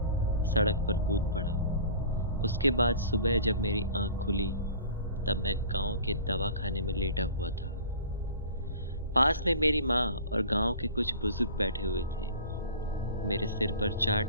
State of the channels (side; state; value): both; inverted; correlation -0.42